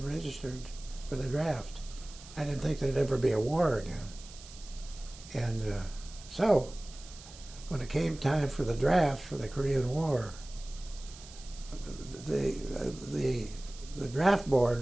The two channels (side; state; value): right; noise; hiss, 18 dB below the sound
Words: registered for the draft. I didn't think there'd ever be a war again. And so when it came time for the draft for the Korean War, the draft